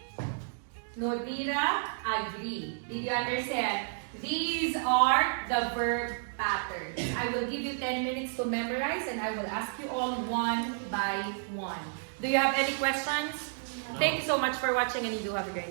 Nodira agree. Did you understand? These are the verb patterns. I will give you 10 minutes to memorize and I will ask you all one by one. Do you have any questions? Thank you so much for watching and you do have a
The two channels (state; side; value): silent; left; digital silence